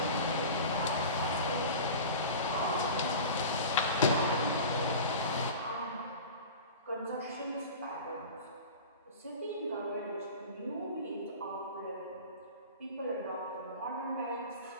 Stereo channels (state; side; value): inverted; both; correlation -0.35